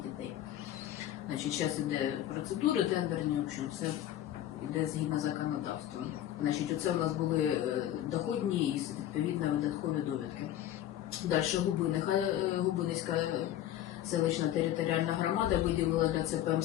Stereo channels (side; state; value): right; quieter; 12.3 dB